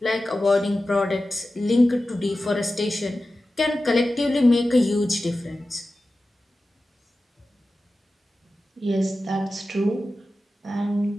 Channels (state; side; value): normal; both; correlation 0.94